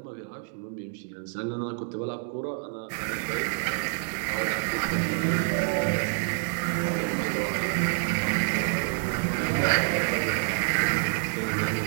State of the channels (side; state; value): left; silent; 60 dB below the other